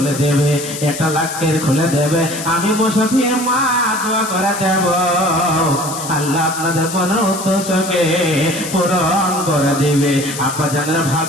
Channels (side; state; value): left; noise; hiss, 9 dB below the sound